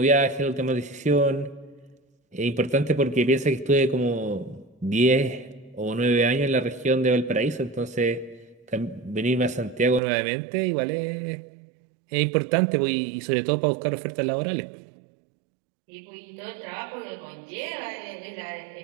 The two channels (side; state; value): left; drops out; at 10.0 s